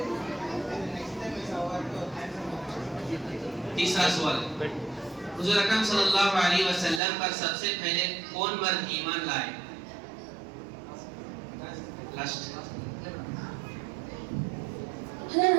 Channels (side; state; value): left; drops out; at 7.0 s